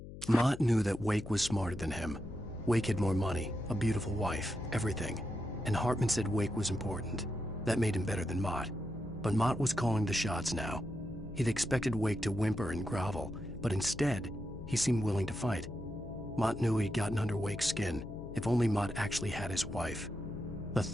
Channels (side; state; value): left; noise; hum, 12 dB below the sound